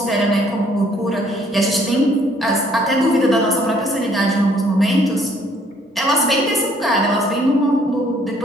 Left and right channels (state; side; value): normal; both; correlation 0.63